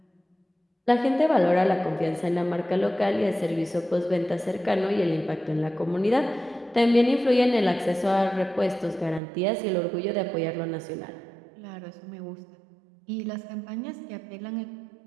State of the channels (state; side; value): drops out; left; at 9.2 s